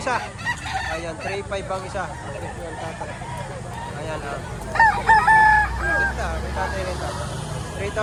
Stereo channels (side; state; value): both; identical; correlation 1.00